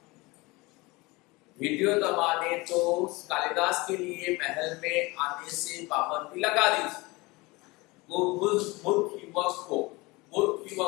विद्योतमा ने तो कालिदास के लिए महल में आने से पाबंदी लगा दी थी। वो मूर्ख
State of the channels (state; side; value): quieter; right; 23.4 dB